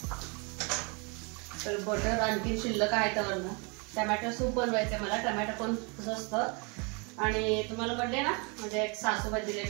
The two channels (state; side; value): quieter; left; 32.1 dB